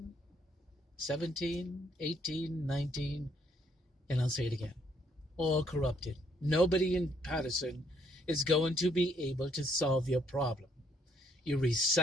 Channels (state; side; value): normal; both; correlation 0.69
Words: 17, 18, 19, and I'll say it again. All corrupted. Nobody in Paterson is going to be able to solve your problem. You